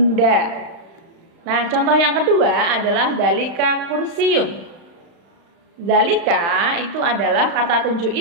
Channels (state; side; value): late; left; 35 ms